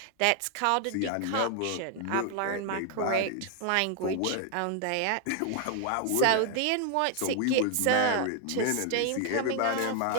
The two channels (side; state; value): both; different; correlation 0.00